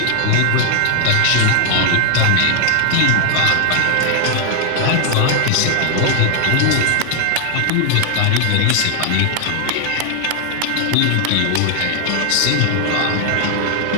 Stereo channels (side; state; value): both; different; correlation 0.00